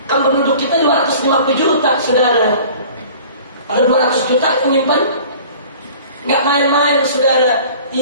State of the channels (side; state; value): both; inverted; correlation -0.46